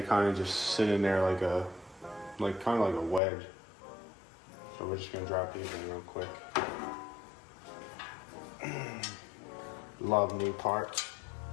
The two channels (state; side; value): drops out; right; at 3.2 s